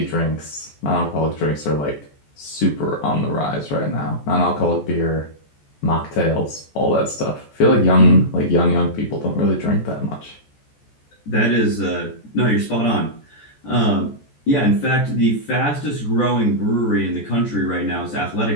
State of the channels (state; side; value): late; right; 14 ms